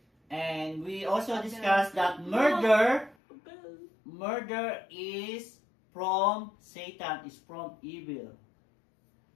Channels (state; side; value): drops out; right; at 3.2 s